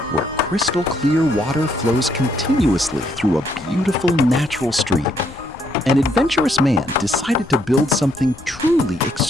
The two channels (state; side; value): noise; left; rumble, 19 dB below the sound